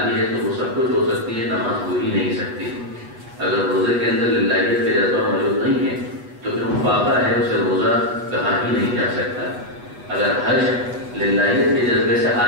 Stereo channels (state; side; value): late; left; 8.2 ms